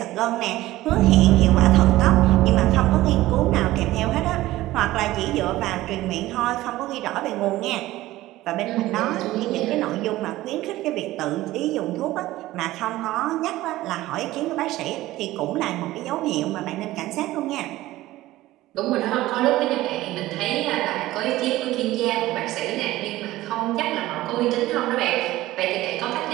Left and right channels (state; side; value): quieter; left; 16.6 dB